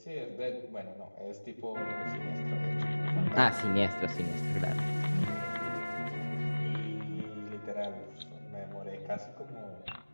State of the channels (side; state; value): both; inverted; correlation -1.00